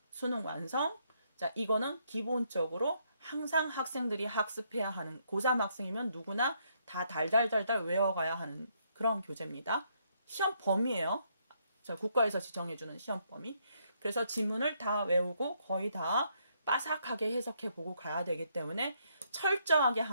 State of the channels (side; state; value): both; inverted; correlation -0.73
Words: 수능 완성. 자, 이거는 기본적으로 항상 학생들이 학습해야 하는 고3 학생이면 누구나 다 달달달달 외워가야 하는 그런 교재입니다. 시험 범위예요. 자, 국가에서 지정해주는 시험 범위. 그래서 지문을 다 외우고 거의 다 빠삭하게 해석해보고 가야 되기 때문에 철저하게